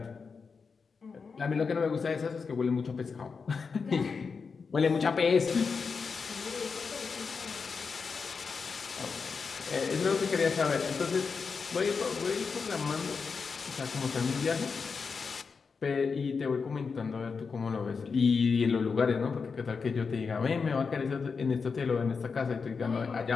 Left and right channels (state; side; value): quieter; right; 5.2 dB